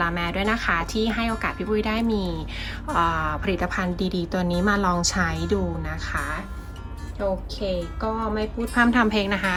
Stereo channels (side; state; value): both; identical; correlation 1.00